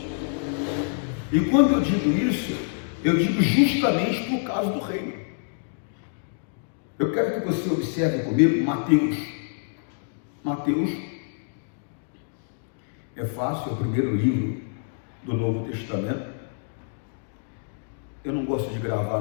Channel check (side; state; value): right; silent; digital silence